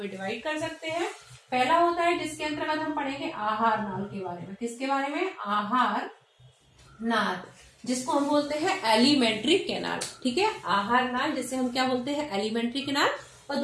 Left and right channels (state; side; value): identical; both; correlation 1.00